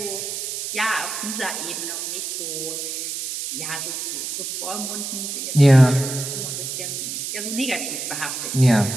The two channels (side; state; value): right; noise; hiss, 4 dB below the sound